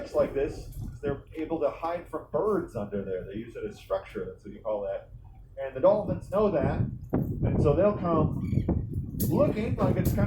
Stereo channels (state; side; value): identical; both; correlation 1.00